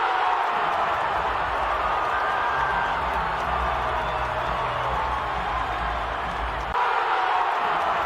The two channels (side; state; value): both; identical; correlation 1.00